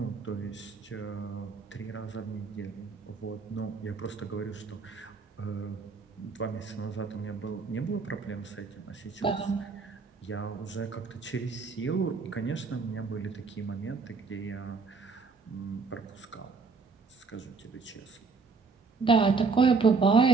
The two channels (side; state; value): left; quieter; 4.6 dB